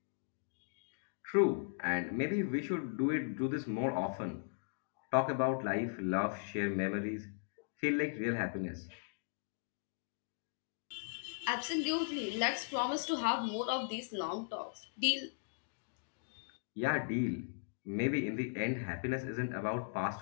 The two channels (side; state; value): right; silent; digital silence